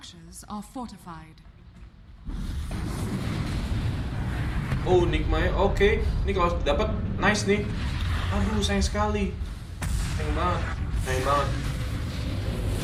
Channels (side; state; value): both; identical; correlation 1.00